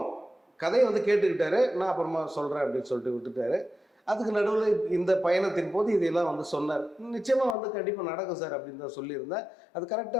கதையை வந்து கேட்டுக்கிட்டாரு, நான் அப்புறமா சொல்கிறேன் அப்படின்னு சொல்லிட்டு விட்டுட்டாரு. அதுக்கு நடுவில் இந்த பயணத்தின் போது இதெல்லாம் வந்து சொன்னார். நிச்சயமாக வந்து கண்டிப்பாக நடக்கும் சார் அப்படின்னு தான் சொல்லியிருந்தேன். அது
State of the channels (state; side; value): drops out; right; at 7.6 s